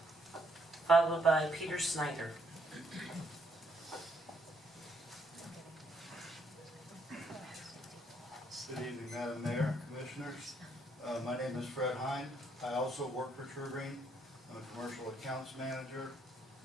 followed by Peter Snyder. Good evening, Madam Mayor, Commissioners. My name is Fred Hine. I also work for True Green. I'm a commercial accounts manager.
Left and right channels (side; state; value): both; normal; correlation 0.71